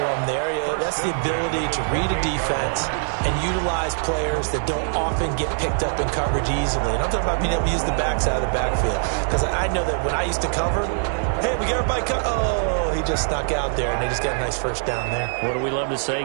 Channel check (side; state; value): left; silent; digital silence